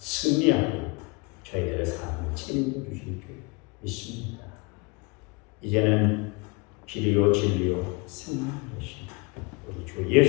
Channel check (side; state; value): right; quieter; 28.4 dB